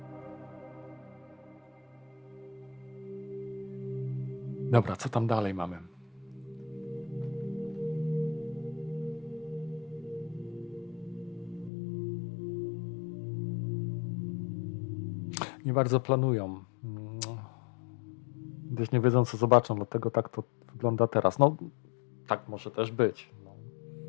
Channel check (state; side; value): drops out; right; at 11.7 s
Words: Dobra, co tam dalej mamy? Nie bardzo planują. Gdyż nie wiedzą, co zobaczą, dlatego tak to wygląda teraz. No, tak może też być. No.